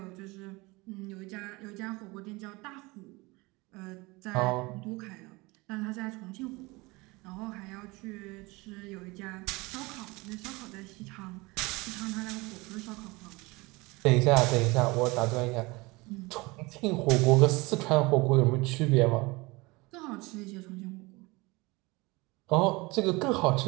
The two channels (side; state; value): left; quieter; 23.8 dB